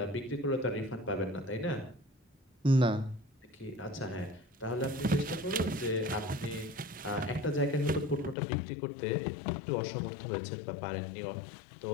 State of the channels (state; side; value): drops out; right; at 8.3 s